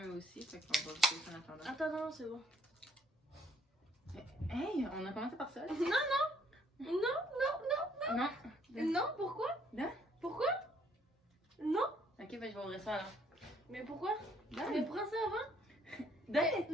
eux aussi. Fait qu'on va goûter ça en attendant. attends, non, c'est bon. Hey, on a commencé par ça. Non, non. Non, non, non, Non. non. Non, pourquoi? Non? Pourquoi? Non? Ok, ben je vais ouvrir ça alors. Mais pourquoi? Donne. Mais prends ça avant.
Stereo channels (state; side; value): normal; both; correlation 0.65